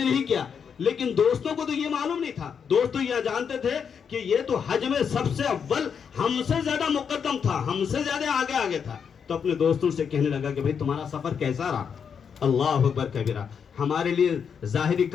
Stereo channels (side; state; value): right; quieter; 6.9 dB